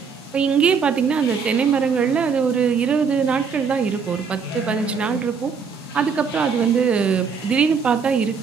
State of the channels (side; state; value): left; quieter; 5.8 dB